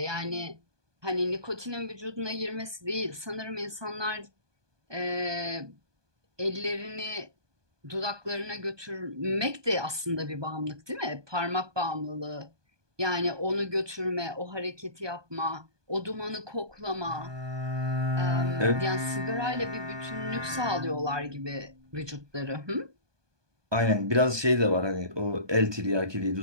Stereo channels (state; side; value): late; left; 1.2 ms